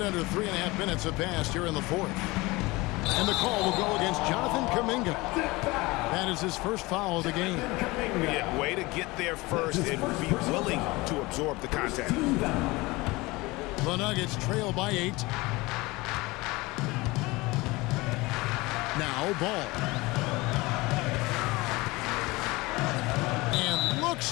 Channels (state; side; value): quieter; right; 22.3 dB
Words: under 3.5 minutes have passed here in the fourth. And the call will go against Jonathan Kuminga. That is his first foul of the game. Yeah, way to get there first and be willing to absorb the contact. The Nuggets trail by 8. Now Ball. And looks